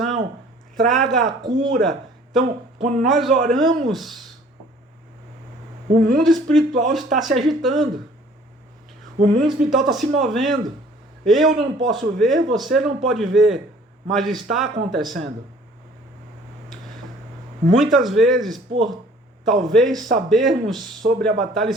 traga a cura. Então, quando nós oramos, o mundo espiritual está se agitando. O mundo espiritual está se movendo. Eu não posso ver, você não pode ver, mas está acontecendo. Muitas vezes, por talvez sabermos sobre a batalha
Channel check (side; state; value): both; normal; correlation 0.54